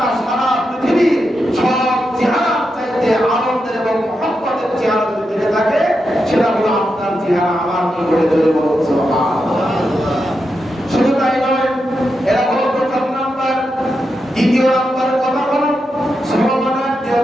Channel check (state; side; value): normal; both; correlation 0.86